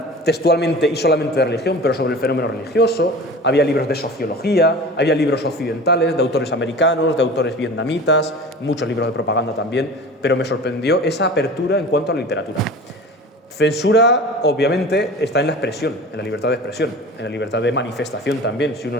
textualmente y solamente de religión, pero sobre el fenómeno religioso. Había libros de sociología, había libros occidentales, de autores americanos, de autores vietnamitas, muchos libros de propaganda también, pero me sorprendió esa apertura en cuanto a la literatura. Censura, obviamente, está en la expresión, en la libertad de expresión, en la libertad de manifestación también. Si uno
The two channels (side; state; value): both; normal; correlation 0.37